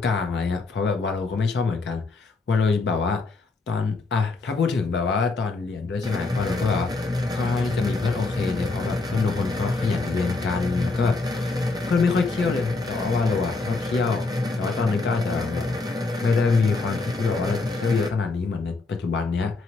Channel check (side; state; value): right; quieter; 3.7 dB